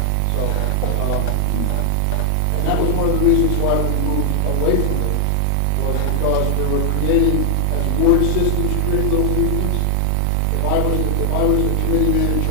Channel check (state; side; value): different; both; correlation 0.00